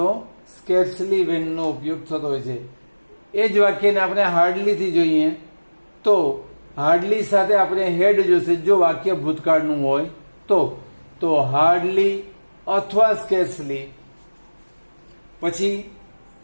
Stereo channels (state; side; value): inverted; both; correlation -1.00